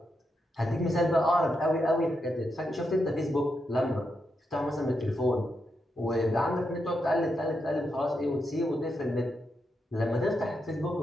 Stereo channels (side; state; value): both; normal; correlation 0.84